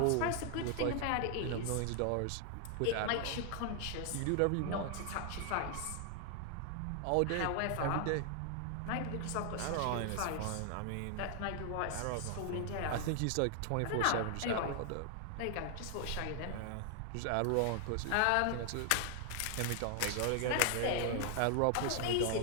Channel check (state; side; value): different; both; correlation 0.00